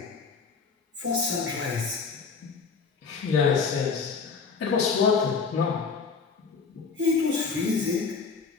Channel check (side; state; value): right; quieter; 5.2 dB